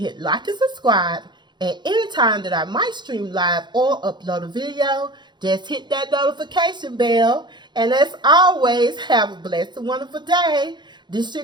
like and subscribe. And anytime that I might stream live or upload a video, Just hit that notification bell. And as always, have a blessed and wonderful day. This your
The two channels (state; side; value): late; left; 0.22 ms